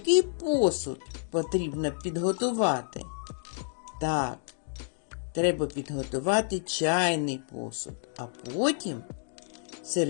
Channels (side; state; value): right; silent; 57 dB below the other